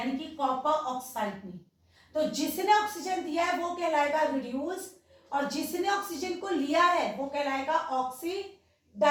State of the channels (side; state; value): both; identical; correlation 1.00